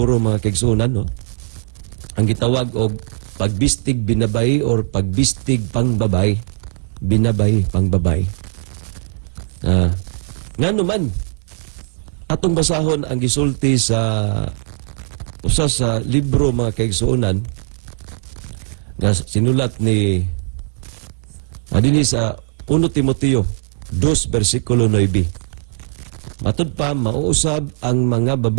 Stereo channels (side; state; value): left; silent; 67 dB below the other